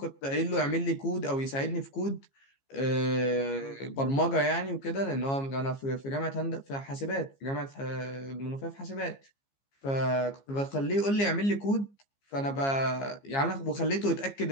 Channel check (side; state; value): right; late; 15 ms